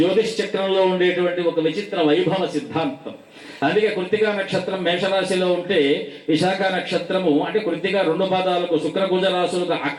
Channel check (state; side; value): identical; both; correlation 1.00